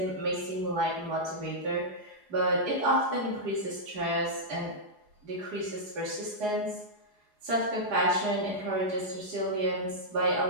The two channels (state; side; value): late; left; 4.8 ms